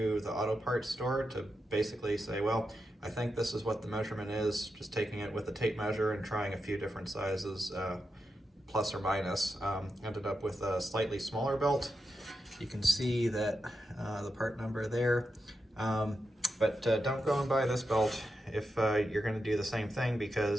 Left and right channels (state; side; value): normal; both; correlation 0.87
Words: the auto parts store to basically say, well, I think this is what the measurement is, just taking it with a tape measure and trying a few different sizes, plus or minus. Ended up with a slightly smaller belt. You can see that the part number there, but don't go and buy this belt if you're going to do the same thing,